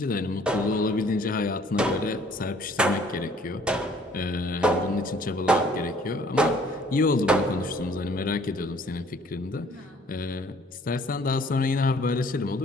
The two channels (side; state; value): both; normal; correlation 0.58